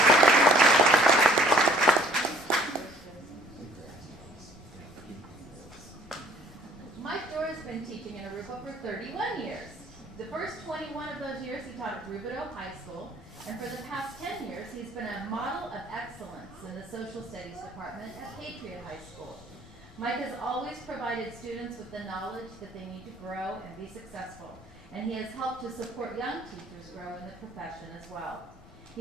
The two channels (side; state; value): left; noise; rumble, 24 dB below the sound